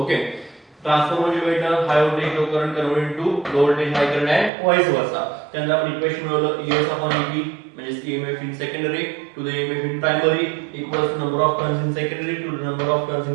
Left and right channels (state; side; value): drops out; left; at 4.5 s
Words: Transformer जे भेटणार, high voltage low current convert to low voltage high current आहे, व्हाईस वर्सा. त्यानंतर आपण इक्वेशन मिळवलं, ईएस अपॉन ईपी म्हणजे EMF in secondary to the EMF in primary equals to number of turns in secondary to the number of turns